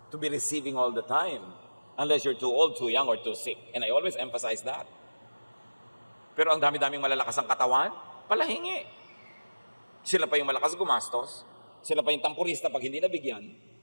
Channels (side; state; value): both; inverted; correlation -1.00